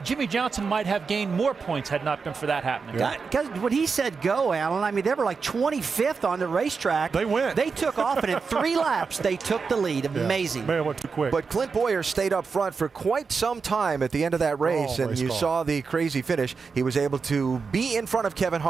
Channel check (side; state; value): left; quieter; 5.1 dB